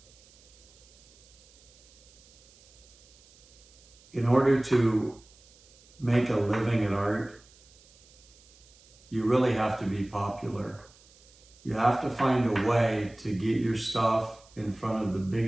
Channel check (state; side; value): noise; right; hiss, 27 dB below the sound